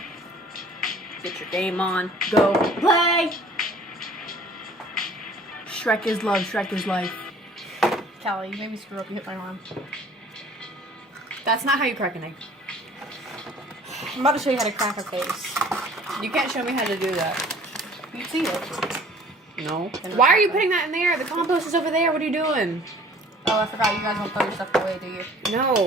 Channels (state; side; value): normal; both; correlation 0.51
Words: Get your game on. Go play! Shrek is love, Shrek is life. Callie, you made me screw up. You hit my arm. That's not how you crack an egg. I'm about to show you how to crack a face. You can't show me how to do that. You see it. No. Why are you putting that in there? The compost is over there. What are you doing? Oh, I forgot. You guys don't throw your stuff away, do you?